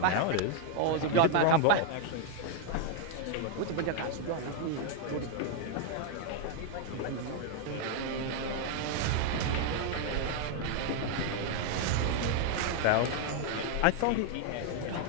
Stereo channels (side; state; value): both; different; correlation 0.00